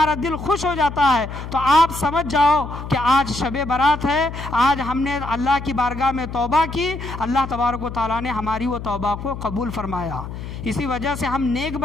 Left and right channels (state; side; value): noise; left; hum, 9 dB below the sound